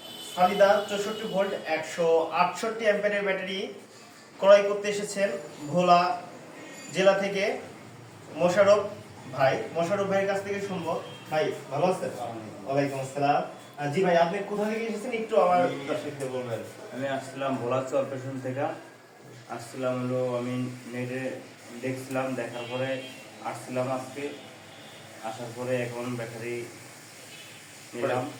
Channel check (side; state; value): both; identical; correlation 1.00